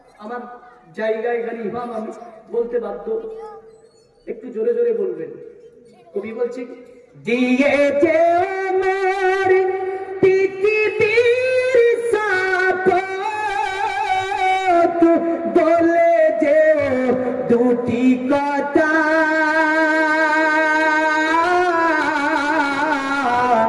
আমার জায়গা, এখানে ইমাম, আমি বলতে বাধ্য। একটু জোরে জোরে বলবেন। কবি বলছে, দিয়ে যে আমার পৃথিবীর সাপোর্ট বলে যে দুটি কথা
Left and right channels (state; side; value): identical; both; correlation 1.00